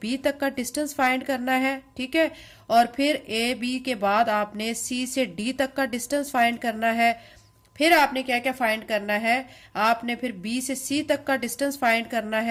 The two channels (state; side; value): identical; both; correlation 1.00